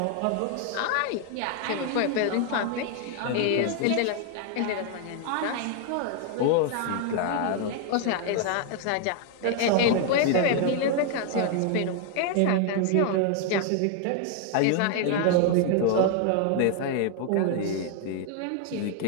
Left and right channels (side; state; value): both; different; correlation 0.00